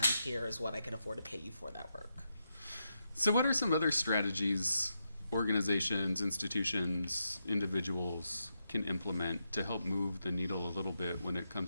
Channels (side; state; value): both; inverted; correlation -0.84